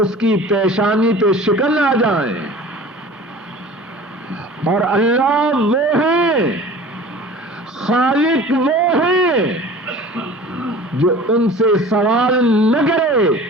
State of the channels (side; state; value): both; normal; correlation 0.42